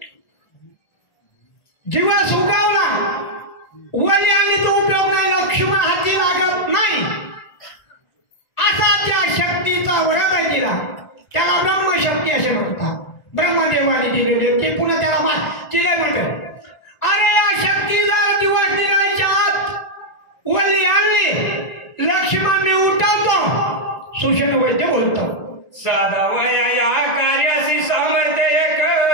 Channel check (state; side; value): late; right; 1.4 ms